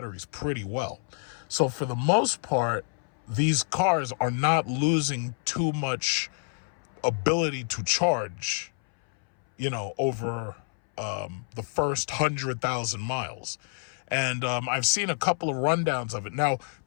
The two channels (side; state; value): right; silent; 59 dB below the other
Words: pretty well. So for the most part, these cars are not losing too much ability to charge, over the first 100,000 miles. And I've seen a couple of rundowns of it. Now,